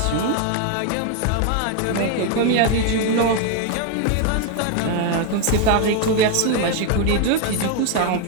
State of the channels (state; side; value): different; both; correlation 0.01